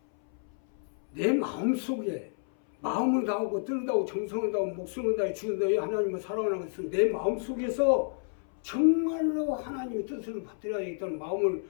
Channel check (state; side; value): silent; right; 58 dB below the other